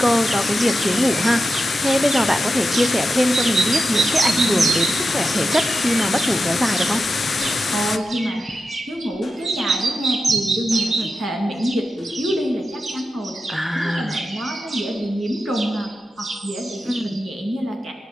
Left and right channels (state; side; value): normal; both; correlation 0.90